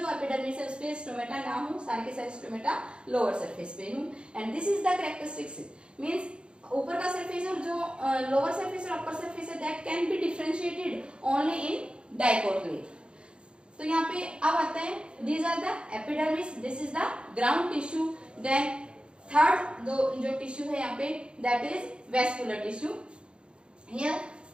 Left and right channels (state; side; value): late; left; 0.054 ms